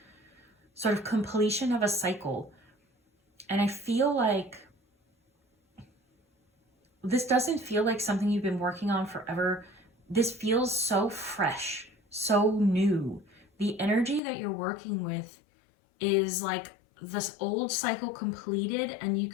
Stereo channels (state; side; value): drops out; right; at 14.2 s